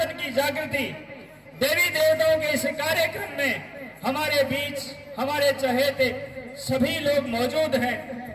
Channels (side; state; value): both; identical; correlation 1.00